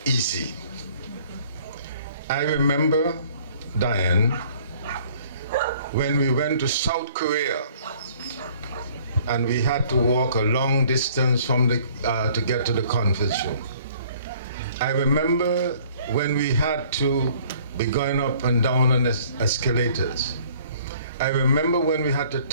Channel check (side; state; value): both; inverted; correlation -0.56